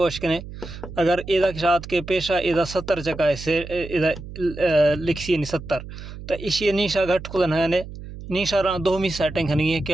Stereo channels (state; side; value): noise; right; hum, 12 dB below the sound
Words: वशकने अगर इधर के साथ के पेशा इधर 70 चका है से इधर लिखी नहीं 70 तो इसी निशा घट खुदा है निशा रहा दो मी सेटिंग नहीं है कि